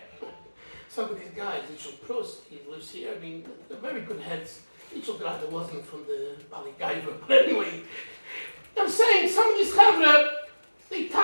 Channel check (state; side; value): inverted; both; correlation -1.00